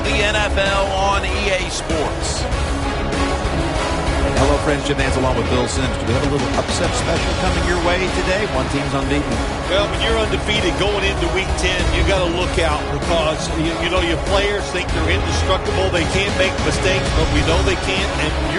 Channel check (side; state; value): both; identical; correlation 1.00